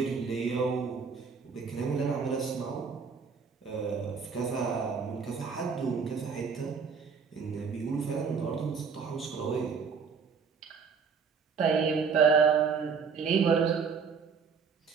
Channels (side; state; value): left; quieter; 5.8 dB